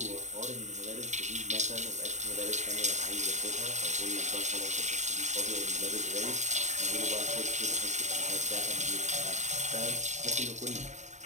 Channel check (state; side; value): late; left; 0.34 ms